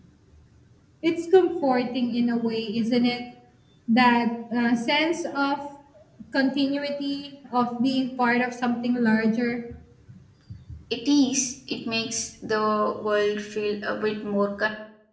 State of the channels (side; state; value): both; identical; correlation 1.00